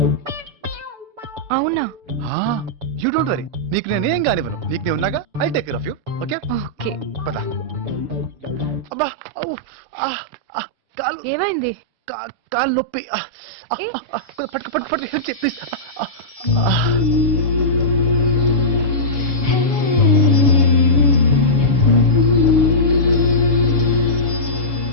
అవునా? యూ డోంట్ వరీ, నీకు నేనేం కానివ్వను. నీకు నేను ఉన్నాగా, I take care of you. Okay okay. పద. అబ్బా కాలు ఏమైంది? కాలు నొప్పి. పట్టు పట్టు పట్టు ప్లీజ్.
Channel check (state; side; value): late; left; 6.9 ms